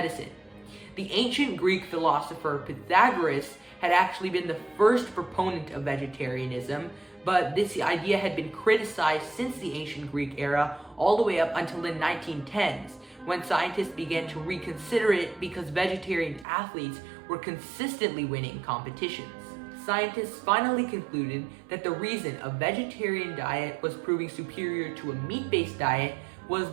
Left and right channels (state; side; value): drops out; left; at 16.4 s